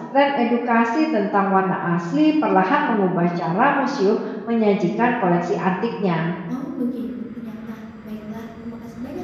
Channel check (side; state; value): both; identical; correlation 1.00